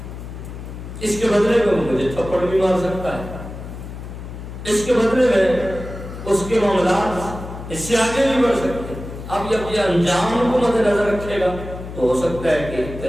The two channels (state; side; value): noise; left; hum, 11 dB below the sound